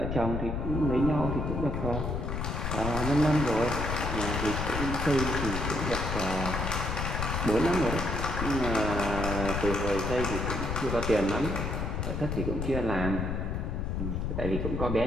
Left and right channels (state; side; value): noise; left; rumble, 2 dB below the sound